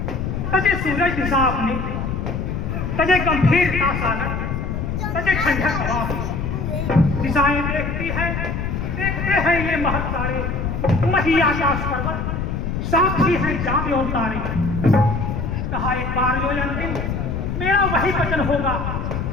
तजे सूरज दिशा अपनी, तजे गंभीरता सागर, तजे ठंडक हवा अपनी। दिशाएं देखती है, देखते हैं ये महत तारे, मही आकाश पर्वत, साक्षी है चांद और तारे। कहा एक बार जो अंतिम मेरा वही वचन होगा,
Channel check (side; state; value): left; noise; rumble, 3 dB below the sound